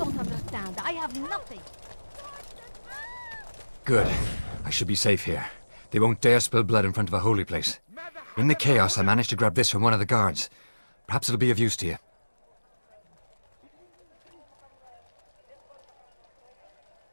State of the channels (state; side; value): inverted; both; correlation -1.00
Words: understand. I have nothing. Good. I should be safe here. They won't dare spill blood in front of a holy place. In the chaos, I managed to grab this from one of the guards. Perhaps it'll be of use to you.